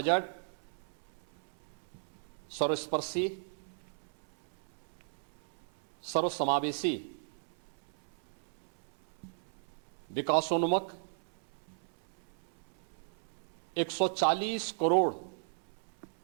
सर्वस्पर्शी, सर्वसमावेशी, विकासोन्मुख, 140 करोड़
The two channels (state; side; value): silent; left; 54 dB below the other